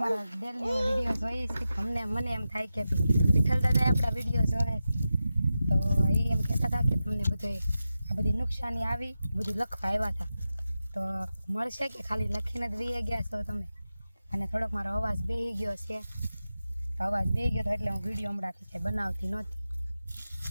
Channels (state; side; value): inverted; both; correlation -0.92